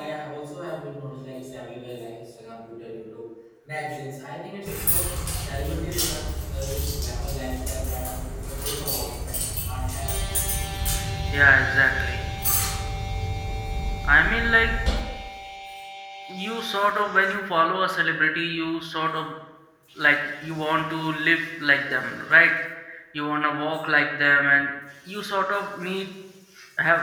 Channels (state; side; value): identical; both; correlation 1.00